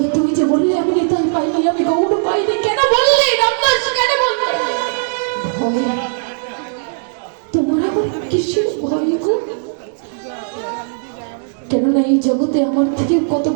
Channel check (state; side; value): silent; left; 68 dB below the other